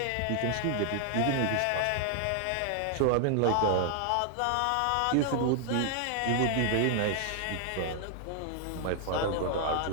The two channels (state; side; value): different; both; correlation 0.00